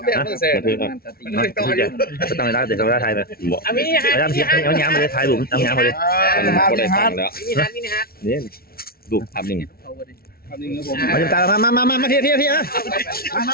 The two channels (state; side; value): late; right; 0.44 ms